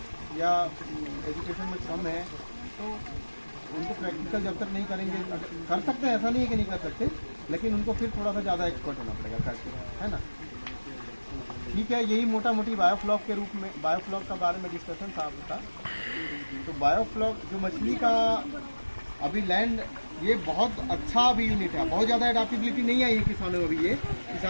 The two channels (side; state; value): both; inverted; correlation -1.00